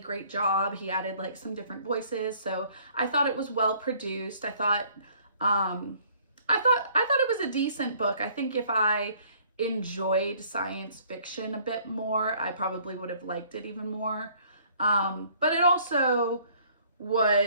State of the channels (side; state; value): both; inverted; correlation -0.59